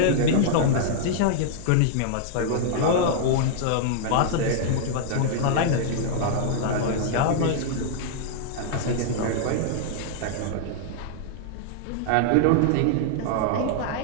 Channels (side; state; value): both; different; correlation -0.01